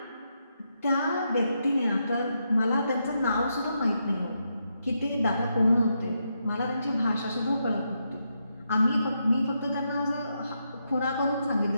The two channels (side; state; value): both; inverted; correlation -0.82